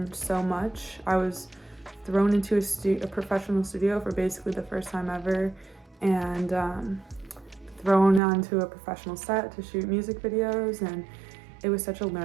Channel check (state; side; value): drops out; left; at 8.2 s